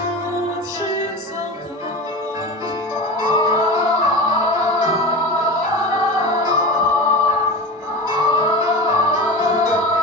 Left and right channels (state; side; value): normal; both; correlation 0.28